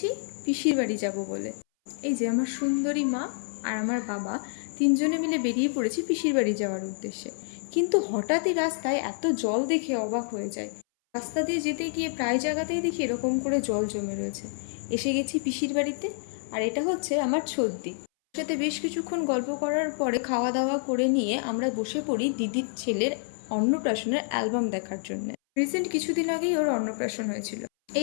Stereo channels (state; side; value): silent; right; 59 dB below the other